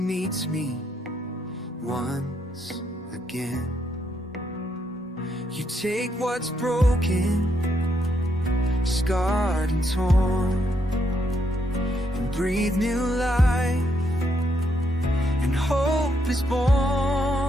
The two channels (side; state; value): both; normal; correlation 0.76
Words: me once again. You take what's broken, scarred and torn, and breathe new life, and hope is